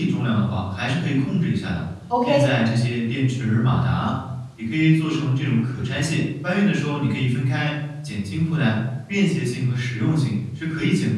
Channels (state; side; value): identical; both; correlation 1.00